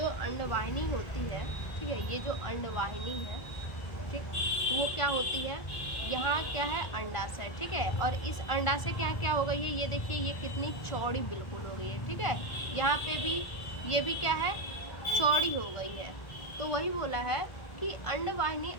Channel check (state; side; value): late; right; 1.4 ms